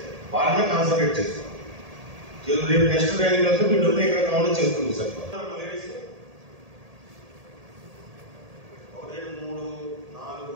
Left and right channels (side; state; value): left; late; 1.8 ms